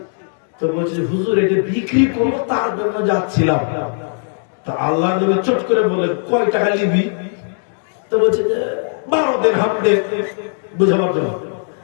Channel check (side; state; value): right; silent; 62 dB below the other